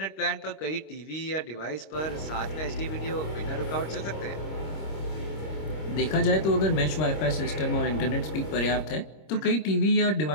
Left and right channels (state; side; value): late; right; 26 ms